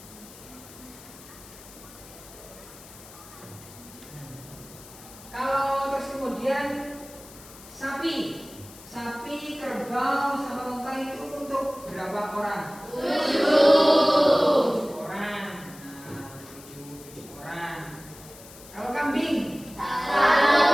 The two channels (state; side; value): noise; left; hiss, 19 dB below the sound